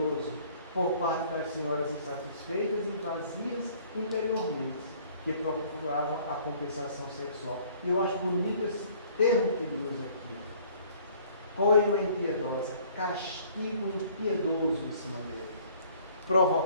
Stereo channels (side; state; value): both; inverted; correlation -0.56